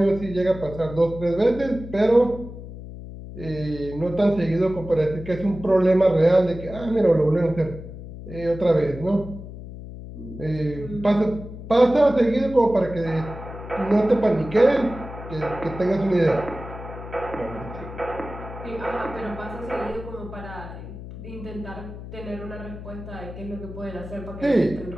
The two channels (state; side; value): noise; left; hum, 12 dB below the sound